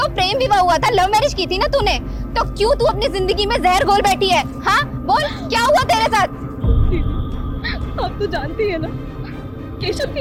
प्रेम विवाह हुआ था, लव मैरिज की थी ना तूने, तो क्यों तू अपनी जिंदगी में जहर घोल बैठी है? हाँ बोल, क्या हुआ तेरे साथ? दीदी आप तो जानती है ना केशव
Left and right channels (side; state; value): both; identical; correlation 1.00